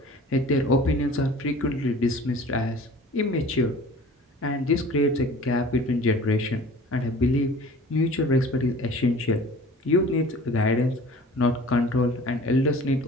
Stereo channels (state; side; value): normal; both; correlation 0.45